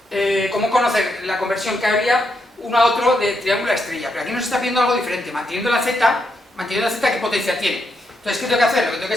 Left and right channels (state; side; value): normal; both; correlation 0.80